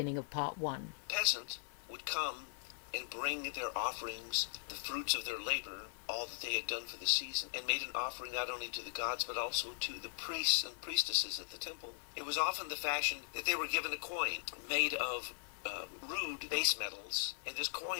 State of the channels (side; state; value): right; silent; 52 dB below the other